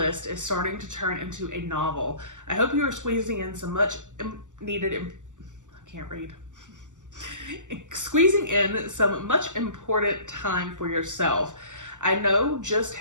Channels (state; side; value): late; left; 0.86 ms